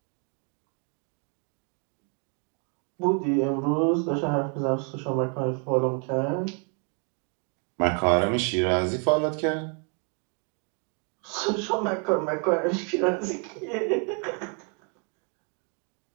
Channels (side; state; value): left; quieter; 38.6 dB